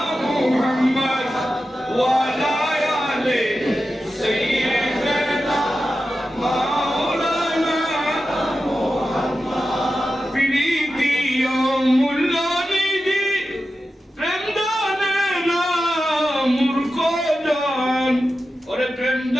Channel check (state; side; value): normal; both; correlation 0.92